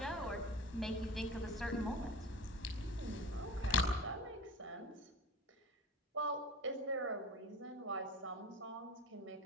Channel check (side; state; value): both; normal; correlation 0.34